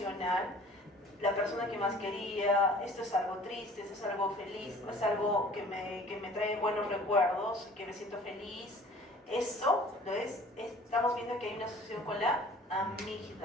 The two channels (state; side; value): normal; both; correlation 0.49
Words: la persona que más quería, esto es algo triste, esto es algo feliz, es algo que me trae buenos recuerdos, que me siento feliz, eso, estamos viendo que hay una asociación con la